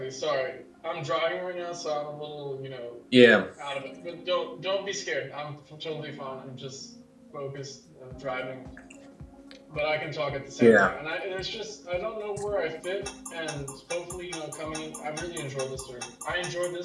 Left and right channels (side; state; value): both; identical; correlation 1.00